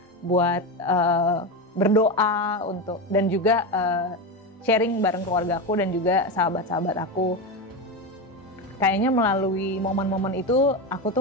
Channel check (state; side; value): normal; both; correlation 0.16